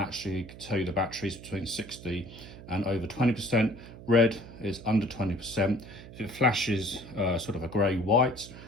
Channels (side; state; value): right; noise; hum, 16 dB below the sound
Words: tell you the battery is between 60 and over 20%. Red is under 20%. If it flashes sort of a grey-white,